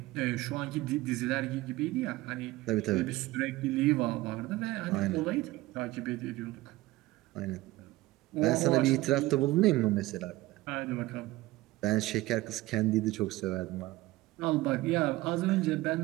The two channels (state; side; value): quieter; left; 18.6 dB